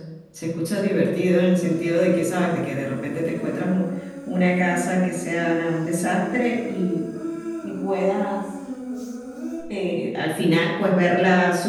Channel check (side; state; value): both; identical; correlation 1.00